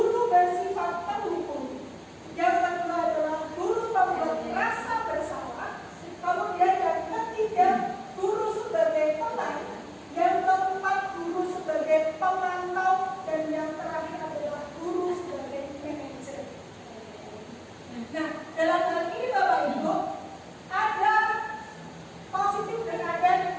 bersifat pendukung. Yang kedua adalah guru pembuat rasa bersalah. Kemudian yang ketiga, guru sebagai pemain. Yang keempat, guru sebagai pemantau. Dan yang terakhir adalah guru sebagai manajer. Nah, dalam hal ini Bapak Ibu, ada positif dan ada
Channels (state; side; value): identical; both; correlation 1.00